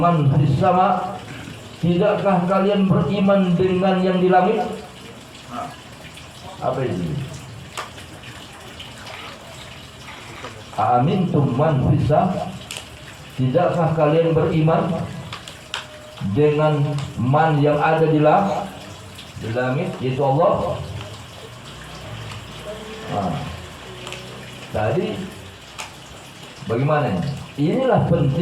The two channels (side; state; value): both; identical; correlation 1.00